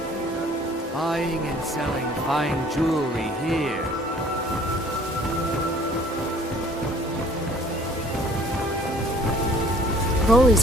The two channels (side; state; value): both; normal; correlation 0.54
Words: Buying and selling fine jewelry here. Rolly's